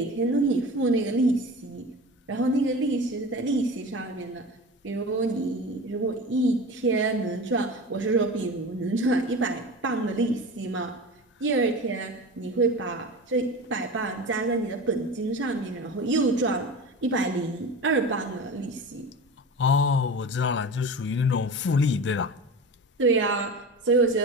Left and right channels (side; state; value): both; normal; correlation 0.31